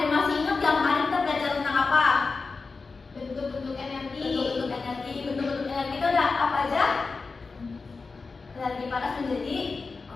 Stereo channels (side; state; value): right; quieter; 4.3 dB